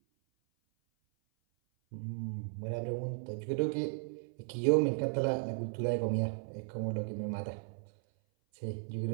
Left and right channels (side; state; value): left; silent; 54 dB below the other